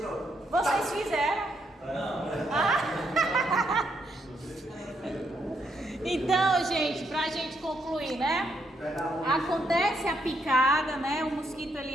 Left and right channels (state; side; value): normal; both; correlation 0.76